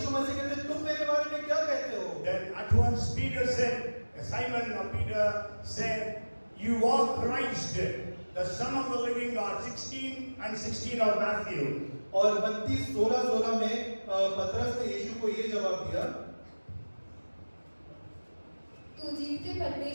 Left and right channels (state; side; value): inverted; both; correlation -1.00